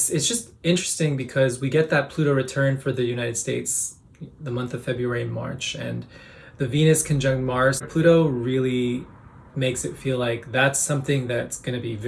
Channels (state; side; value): identical; both; correlation 1.00